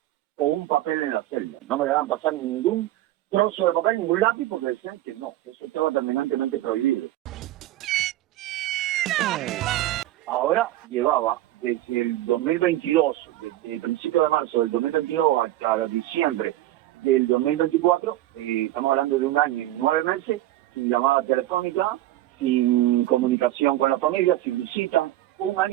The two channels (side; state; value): left; quieter; 15.0 dB